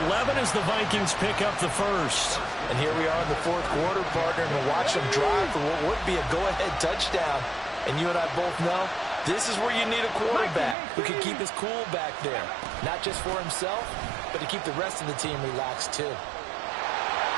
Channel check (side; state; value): left; drops out; at 10.8 s